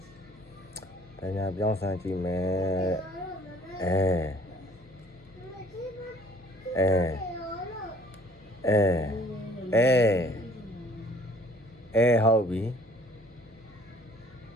တညာပြောင်းဆန်းကြည့်မယ်ဟုတ်ပြီ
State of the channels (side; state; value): both; normal; correlation 0.55